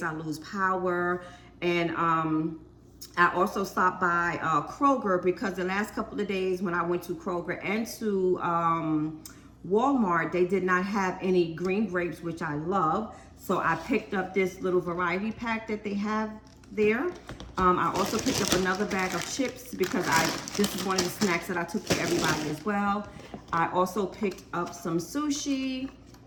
I lose power. And, I also stopped by, Kroger because the last couple of days when I went to Kroger and to, Walmart, they did not have any green grapes, which I love. So I picked up this little variety pack that they have there. I also picked up another bag of chips because this is one of the snacks that I took for everybody as well. I also picked up some sushi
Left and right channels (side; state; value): both; identical; correlation 1.00